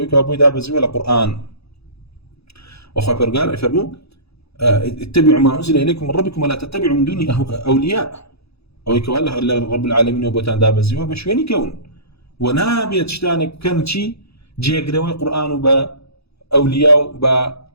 أبوي دابزي ولا قرآن وأخوة برقال يفرموا اتبعوا ما أنزل إليكم من ربكم ولا تتبعوا من دون أولياء أو يكوالله رب العالمين وبوتان دابزي وبشوين كون ونابية تشتانك كان شي جيقروي قرآن وبأولياء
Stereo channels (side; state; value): right; late; 0.78 ms